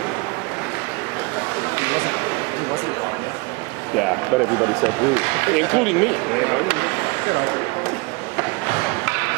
Yeah, but everybody said rude, including me. You know?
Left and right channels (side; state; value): left; quieter; 26.9 dB